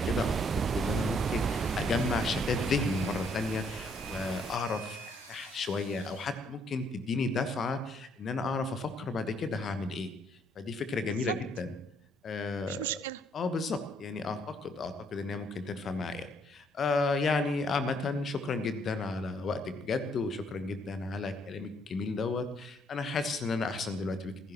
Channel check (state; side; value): normal; both; correlation 0.68